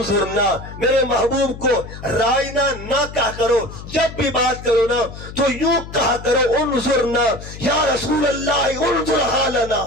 میرے محبوب کو رائنا نہ کہا کرو, جب بھی بات کرو نا تو یوں کہا کرو انظرنا, یا رسول اللہ انظر حالنا.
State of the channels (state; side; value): noise; left; hum, 13 dB below the sound